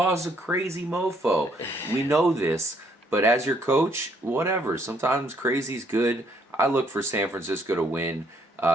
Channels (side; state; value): both; normal; correlation 0.68